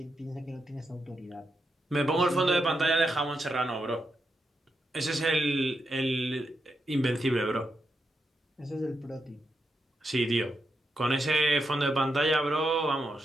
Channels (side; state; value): both; normal; correlation 0.84